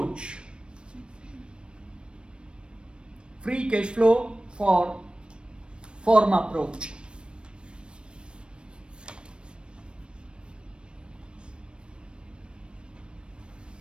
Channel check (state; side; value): late; left; 0.056 ms